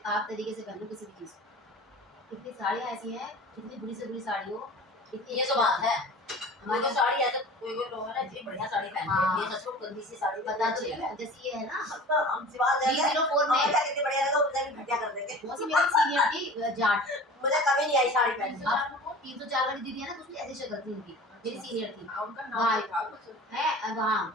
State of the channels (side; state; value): both; normal; correlation 0.40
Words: आप तरीके से पहनो किसी भी चीज को कितनी साड़ियाँ ऐसी हैं कितनी बुरी से बुरी साड़ी हो कितनी ये तो बात है हमारे हमारी साड़ी है तो कोई कोई लोग है ना इतनी बढ़िया साड़ी पहनते हैं ये सच में गंदी सी साड़ी बता अच्छी दो है जैसे ये है ना तो हम सिवा देंगे 304 में कितनी बढ़िया लगा उधर भी घटिया कर देंगे वो सी मेरी सीनियर थी जाट मुझे कभी नहीं आई साड़ी पहनने अब 304 वाली दीदी है ना कुछ ऐसी शक्ल थी उनकी मेरी सीनियर थी उनका नाम था कुछ है वहाँ